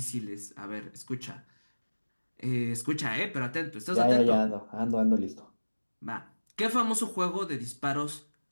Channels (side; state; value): both; inverted; correlation -1.00